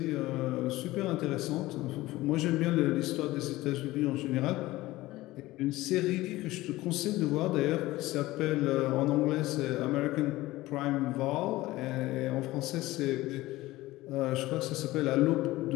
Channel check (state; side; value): quieter; right; 18.0 dB